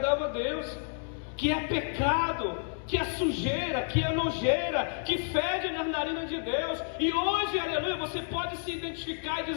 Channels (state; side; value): silent; right; digital silence